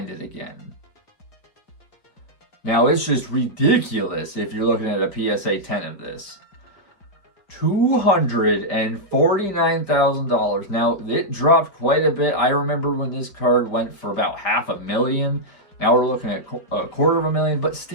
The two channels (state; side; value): late; right; 4.8 ms